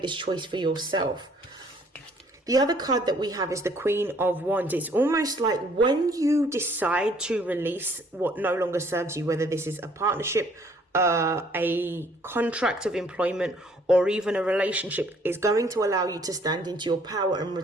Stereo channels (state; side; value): normal; both; correlation 0.61